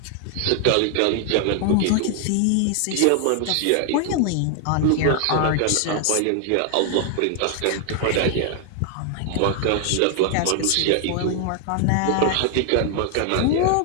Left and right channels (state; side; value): different; both; correlation 0.00